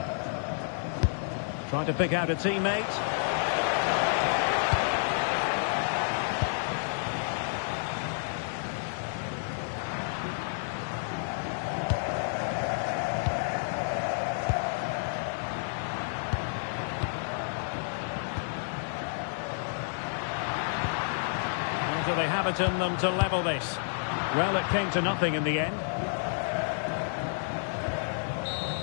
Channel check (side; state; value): right; silent; 58 dB below the other